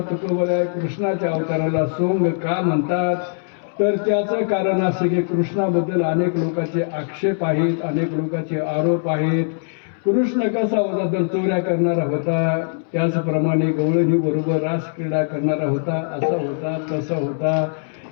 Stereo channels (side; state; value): right; silent; 65 dB below the other